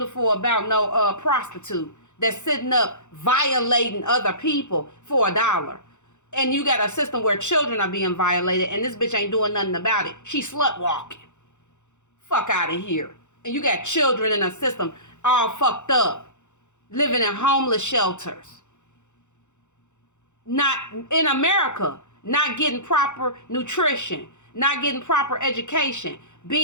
about no prostitute that's sitting up violating other people for $1. And you got a system where children are being violated and this bitch ain't doing nothing about it. She slut walking. Fuck out of here. And you got children in a system all fucked up, living in homeless shelters. Not in America, not getting proper nutrition, not getting proper education,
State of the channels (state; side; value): late; right; 0.84 ms